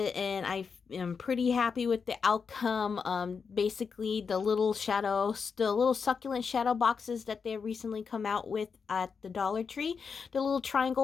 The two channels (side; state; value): right; quieter; 5.7 dB